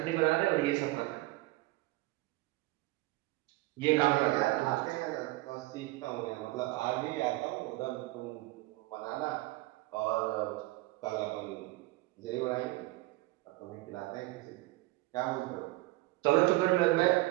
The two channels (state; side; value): quieter; left; 20.1 dB